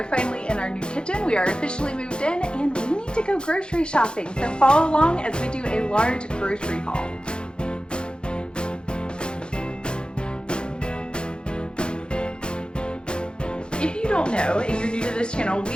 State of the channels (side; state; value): right; late; 0.050 ms